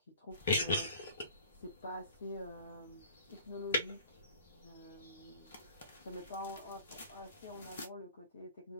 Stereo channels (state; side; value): inverted; both; correlation -0.48